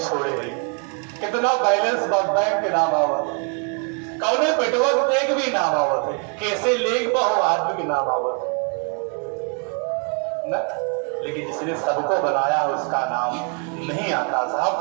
गई, कितना बैलेंस बैंक के नाम आवत, कौने पेटवक देख भी नाम आवत है, कैसे लेग बहु आदमी के नाम आवत न, लेकिन जिसने सबको बनाया उसका नाम नहीं आता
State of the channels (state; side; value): quieter; left; 39.8 dB